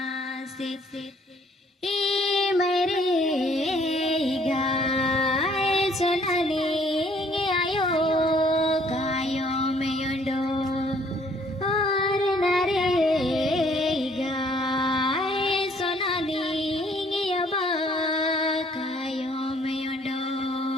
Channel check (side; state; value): both; normal; correlation 0.62